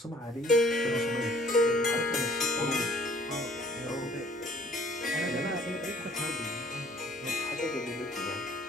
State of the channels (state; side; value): normal; both; correlation 0.57